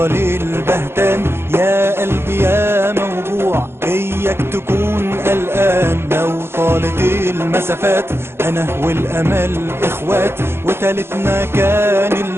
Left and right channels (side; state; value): left; late; 0.12 ms